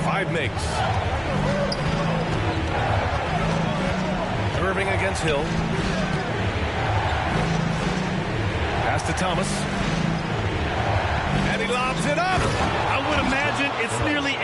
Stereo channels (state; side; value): identical; both; correlation 1.00